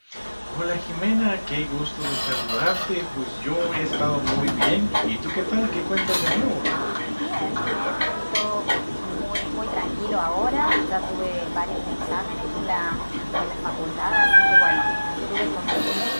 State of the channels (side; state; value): both; inverted; correlation -1.00